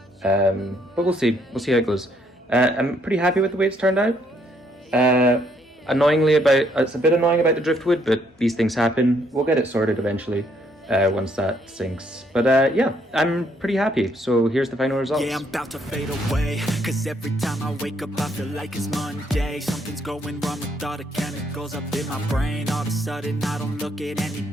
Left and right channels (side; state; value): both; normal; correlation 0.70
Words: but we'll see how it goes. I'm pretty happy with the way it's turned out. It's a bit annoying about the driftwood, but these things happen. We'll get it sorted eventually once that sinks. But yeah, I'm pretty happy. So here's the final results. Yeah, I'm about to fade away, cause every time I wake up I feel like it's Monday. Something's going wrong with all the chemicals up in my brain. All of a sudden I don't look at